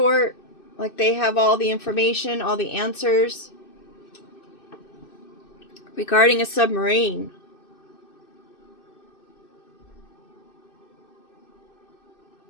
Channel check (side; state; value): right; late; 2.6 ms